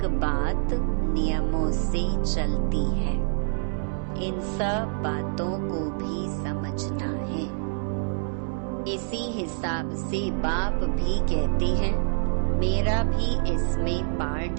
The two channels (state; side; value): silent; left; digital silence